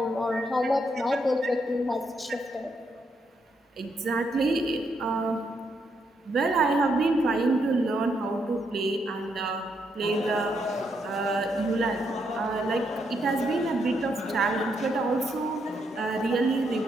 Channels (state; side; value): normal; both; correlation 0.77